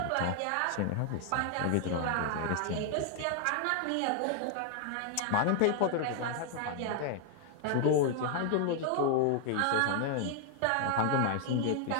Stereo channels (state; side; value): different; both; correlation 0.00